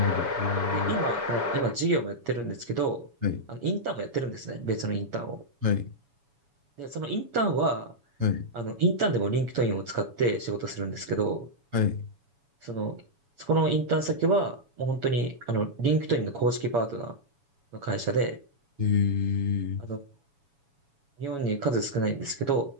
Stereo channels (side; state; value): left; late; 7.1 ms